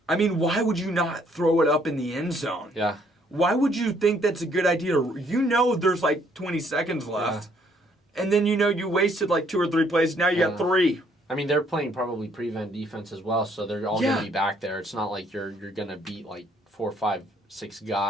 I mean, why would you not throw it up in the end zone? Yeah. Why would you think that's a good idea? There's like 20 seconds left. Yeah. And then you wasted like 2 or 3 plays. Now you got 3. I mean, they're playing probably prevent defense as well, so they're all going to be back there. It's not like you're going to beat like 4, 5, 6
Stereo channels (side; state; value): both; normal; correlation 0.66